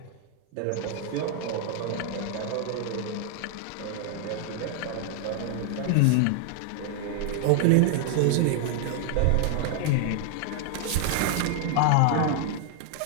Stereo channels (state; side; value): different; both; correlation 0.00